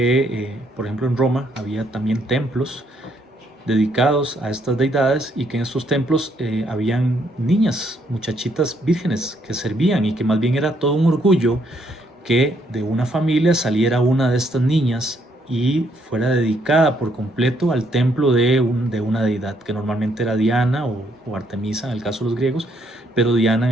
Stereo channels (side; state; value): both; normal; correlation 0.71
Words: por ejemplo, en Roma había también templos dedicados a estas deidades y que en estos templos habían niñas, muchachitas vírgenes que servían, y que más bien era todo un orgullo que de una familia saliera una de estas niñas y fuera dedicada por completo al templo de una deidad, que normalmente era Diana o Artemisa en el caso de los griegos, pero Diana